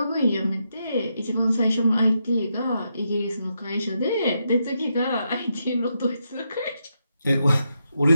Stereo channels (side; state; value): both; inverted; correlation -0.83